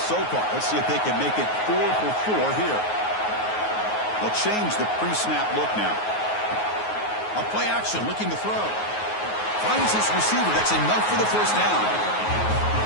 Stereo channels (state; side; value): late; right; 9.4 ms